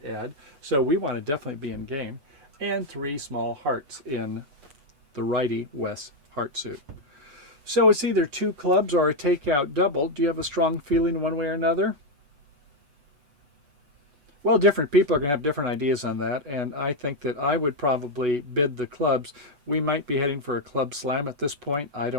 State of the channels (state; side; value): late; left; 8.1 ms